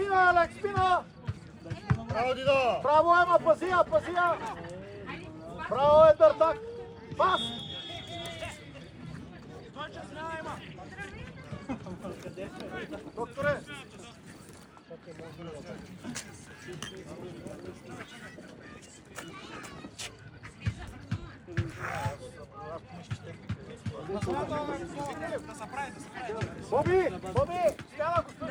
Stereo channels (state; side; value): identical; both; correlation 1.00